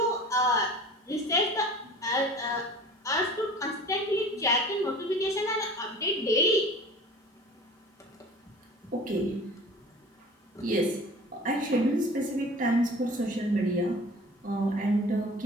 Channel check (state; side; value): normal; both; correlation 0.42